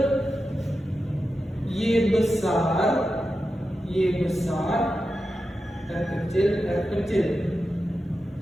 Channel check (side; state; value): both; normal; correlation 0.90